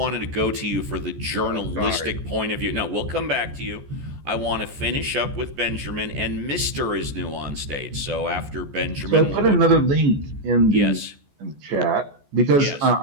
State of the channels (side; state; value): left; late; 14 ms